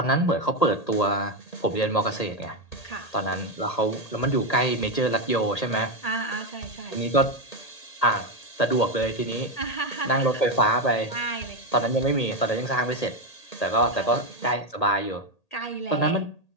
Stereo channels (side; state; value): right; late; 1.8 ms